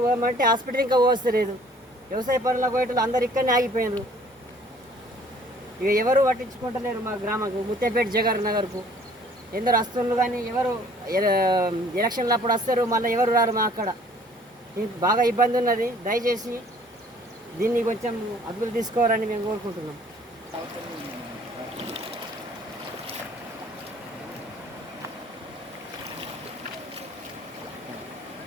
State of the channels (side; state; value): both; normal; correlation 0.55